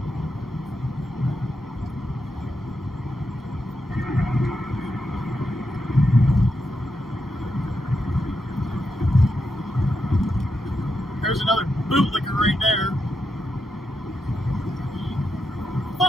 There's another bootlicker right there.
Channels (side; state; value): both; normal; correlation 0.84